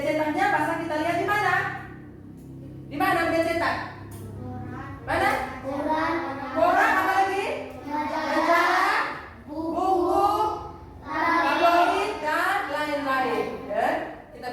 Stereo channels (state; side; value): identical; both; correlation 1.00